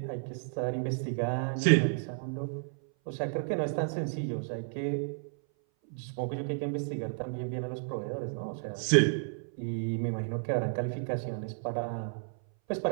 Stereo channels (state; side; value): silent; left; 56 dB below the other